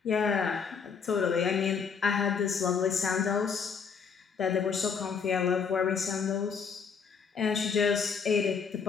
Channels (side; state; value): right; quieter; 6.1 dB